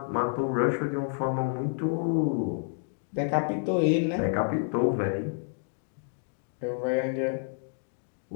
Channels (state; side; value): silent; right; digital silence